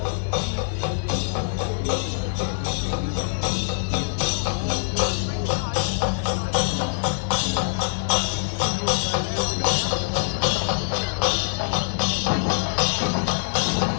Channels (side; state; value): right; silent; digital silence